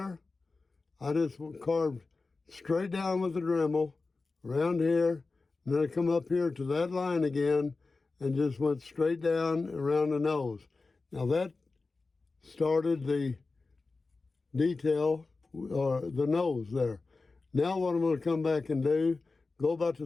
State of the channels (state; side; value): quieter; right; 3.8 dB